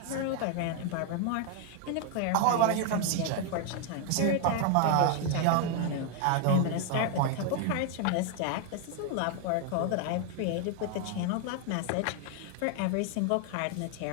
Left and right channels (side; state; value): both; different; correlation 0.01